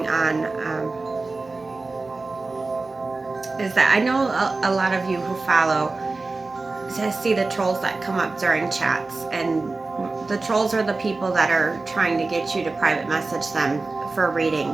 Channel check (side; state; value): left; quieter; 3.6 dB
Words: on is that I know a lot of you who follow to see the trolls that come up during chats, and the trolls are the people that are trying to get you to private message them for